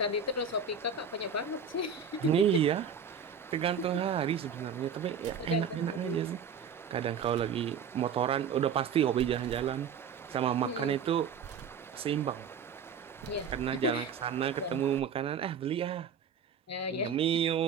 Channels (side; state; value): left; quieter; 6.4 dB